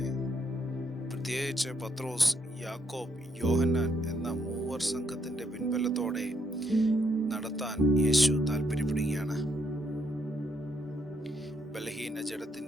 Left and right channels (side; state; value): both; normal; correlation 0.74